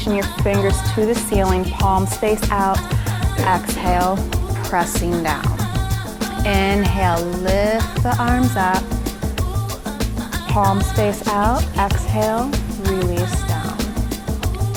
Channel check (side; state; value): both; identical; correlation 1.00